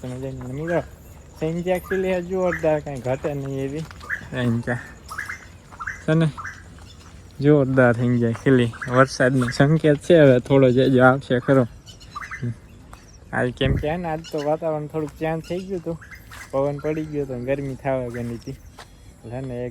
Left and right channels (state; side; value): identical; both; correlation 1.00